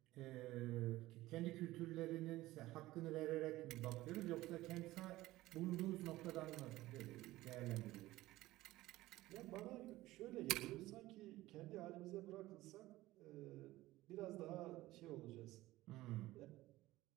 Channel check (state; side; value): quieter; left; 17.3 dB